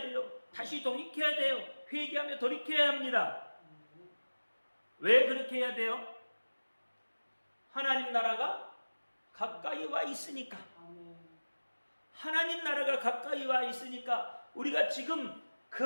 돼요. 다시 돌이켜야 돼요. 회개하며 돌이켜야 합니다. 왜 그렇게 해야 돼요? 하나님 나라가 가까이 와 있으니까. 하나님 나라가 가까이 와 있으니까 우리가 지금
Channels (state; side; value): inverted; both; correlation -1.00